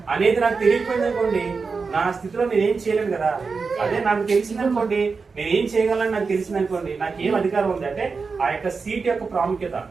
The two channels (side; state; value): left; quieter; 4.8 dB